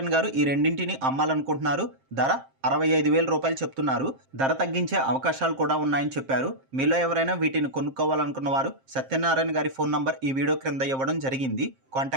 గారు ఈ రెండింటిని అమ్మాలనుకుంటున్నారు. ధర 65,000 రూపాయలు చెప్తున్నారు. ధర తగ్గించే అవకాశాలు కూడా ఉన్నాయని చెప్పారు. మీలో ఎవరైనా వీటిని కొనుక్కోవాలనుకున్న వారు సత్యనారాయణ గారి ఫోన్ నంబర్ ఈ వీడియో క్రింద ఇవ్వడం జరిగింది.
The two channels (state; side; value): late; left; 7.6 ms